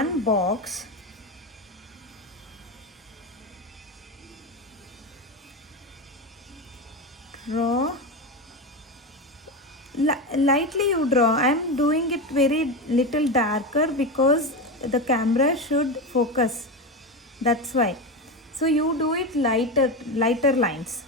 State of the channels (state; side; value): normal; both; correlation 0.18